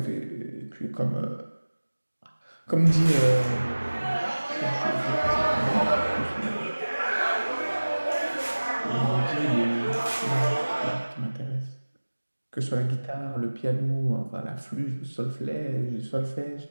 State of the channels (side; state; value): both; inverted; correlation -1.00